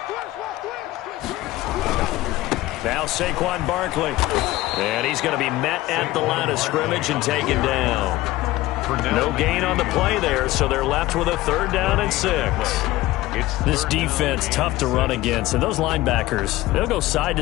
Now Saquon Barkley. And he's going to be met at the line of scrimmage and taken down. No gain on the play there, so they're left with a 3rd down and 6. This defense, tough to run against. And those linebackers, they'll go side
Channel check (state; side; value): quieter; right; 17.3 dB